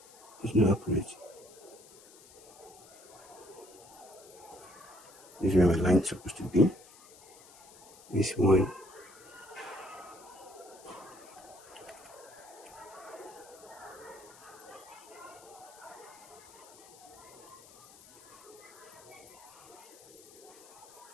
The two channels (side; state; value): left; noise; hiss, 21 dB below the sound